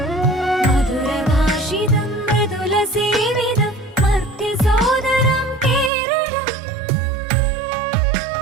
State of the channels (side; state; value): left; drops out; at 5.9 s